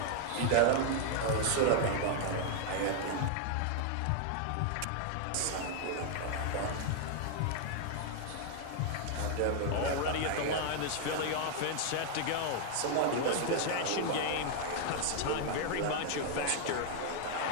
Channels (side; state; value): both; different; correlation 0.00